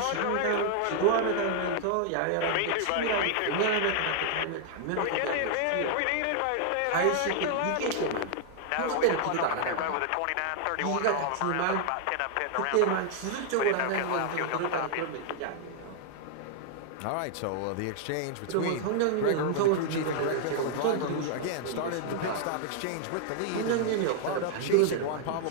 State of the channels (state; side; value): different; both; correlation -0.01